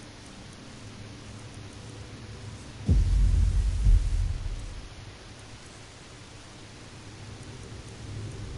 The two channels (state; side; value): identical; both; correlation 1.00